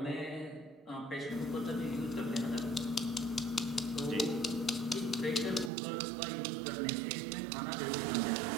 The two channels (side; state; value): left; drops out; at 5.7 s